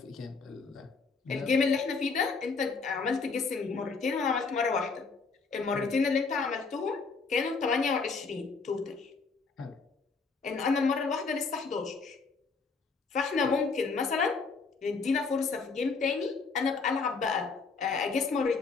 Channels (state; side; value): quieter; right; 4.6 dB